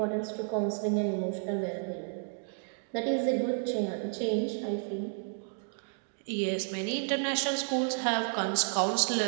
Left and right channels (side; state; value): left; silent; digital silence